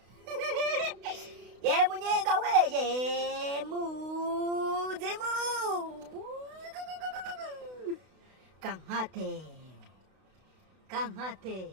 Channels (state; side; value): late; left; 32 ms